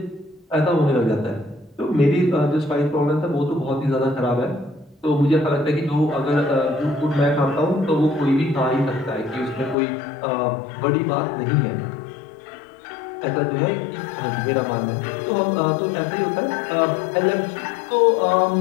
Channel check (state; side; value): drops out; right; at 9.8 s